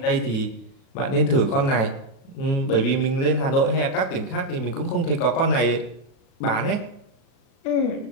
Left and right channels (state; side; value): late; right; 37 ms